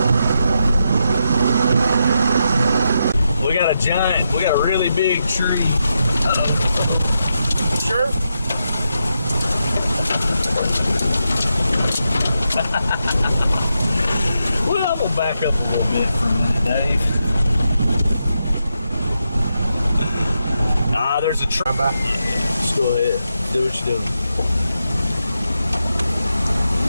We got a really big tree. Uh-oh. Sure. Well, we'll back up a little bit for a minute, Dave. There's a tree. Just go ahead. Do what you're doing.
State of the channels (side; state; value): both; inverted; correlation -0.85